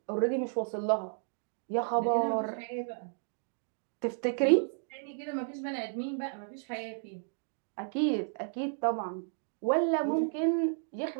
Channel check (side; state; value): left; silent; digital silence